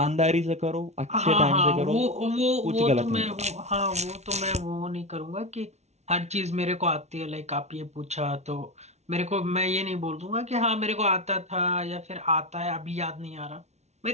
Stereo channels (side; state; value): left; late; 0.32 ms